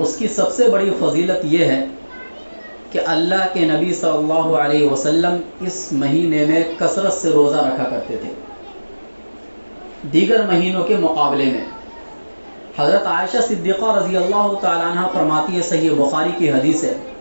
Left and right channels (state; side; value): inverted; both; correlation -1.00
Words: اس کی سب سے بڑی فضیلت یہ ہے کہ اللہ کے نبی صلی اللہ علیہ وسلم اس مہینے میں کثرت سے روزہ رکھا کرتے تھے دیگر مہینوں کے مقابلے میں. حضرت عائشہ صدیقہ رضی اللہ تعالیٰ عنہ فرماتی ہے، صحیح بخاری کی حدیث ہے،